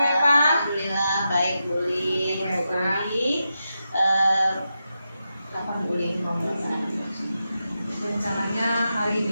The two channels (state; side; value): inverted; both; correlation -0.88